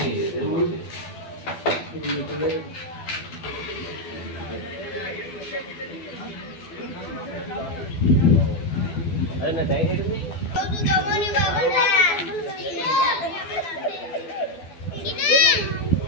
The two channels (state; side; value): late; right; 12 ms